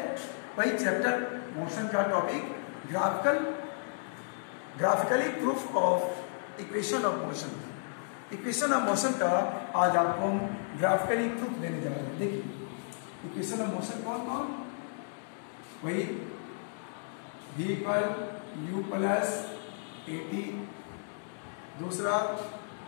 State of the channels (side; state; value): right; silent; digital silence